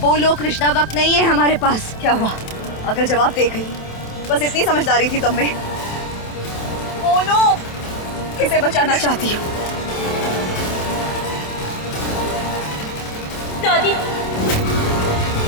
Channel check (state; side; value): late; right; 27 ms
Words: बोलो कृष्णा, वक्त नहीं है हमारे पास। क्या हुआ? अगर जवाब दे गई, बस इतनी समझदारी थी तुम में। बोलो किसे बचाना चाहती हो? दादी,